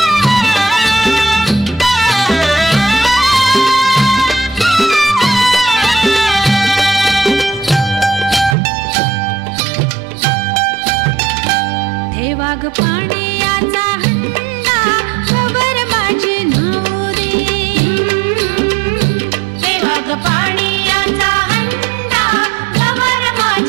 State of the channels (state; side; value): drops out; left; at 8.6 s